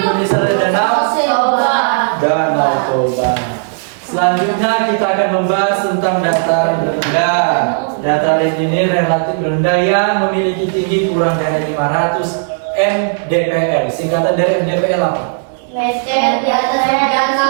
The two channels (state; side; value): silent; left; digital silence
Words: ada danau Danau Toba. Selanjutnya kita akan membahas tentang dataran rendah. Dataran ini relatif rendah yang memiliki tinggi kurang dari 500 mdpl. Singkatan dari mdpl apa? Meter di atas